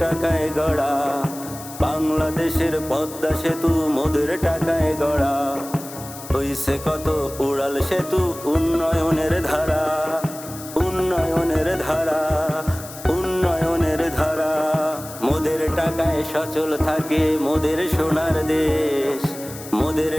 টাকায় গড়া, বাংলাদেশের পদ্মা সেতু মোদের টাকায় গড়া। হইছে কত উড়াল সেতু, উন্নয়নের ধারা, উন্নয়নের ধারা, উন্নয়নের ধারা। মোদের টাকায় সচল থাকে মোদের সোনার দেশ, মোদের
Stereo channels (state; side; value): noise; left; hiss, 14 dB below the sound